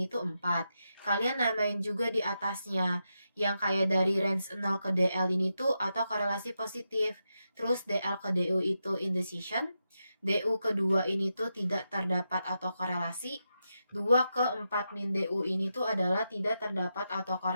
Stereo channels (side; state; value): both; inverted; correlation -0.86